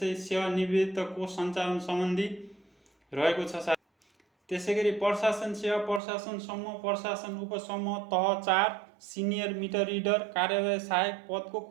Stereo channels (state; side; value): drops out; left; at 6.0 s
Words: सेवानिवृत्त कोष सञ्चालन सम्बन्धी रहेको छ। त्यसै गरी प्रशासन सेवा, प्रशासन समूह, प्रशासन उपसमूह तह 4 सिनियर मिटर रिडर कार्यालय सहायक पदको